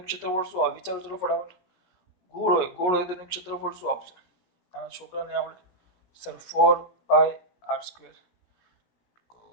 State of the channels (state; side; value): late; right; 17 ms